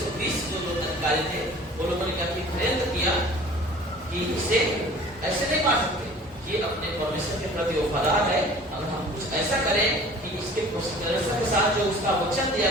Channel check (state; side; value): normal; both; correlation 0.46